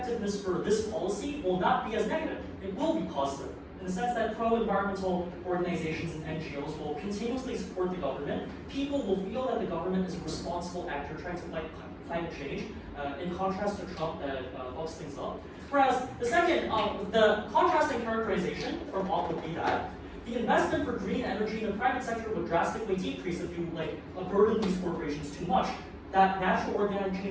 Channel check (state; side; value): identical; both; correlation 1.00